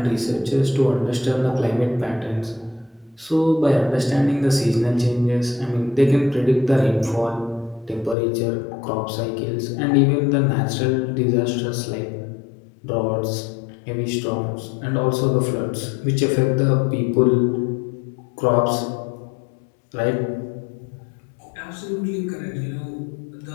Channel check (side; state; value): right; drops out; at 8.2 s